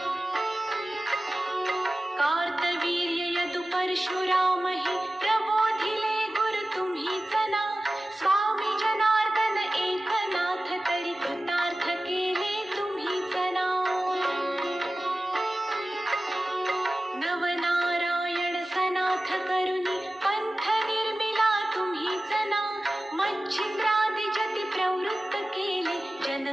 कार्तवीर्य यदु परशुराम हे प्रबोधिले गुरु तुम्हीच ना. स्वामी जनार्दन एकनाथ तरी कृतार्थ केले तुम्हीच ना. नवनारायण सनाथ करुणी पंथ निर्मिला तुम्हीच ना. मच्छिंद्रादि जति प्रवृत्त केले जन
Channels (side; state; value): both; normal; correlation 0.96